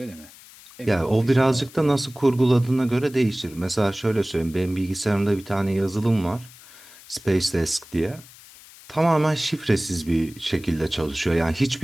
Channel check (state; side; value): noise; left; hiss, 21 dB below the sound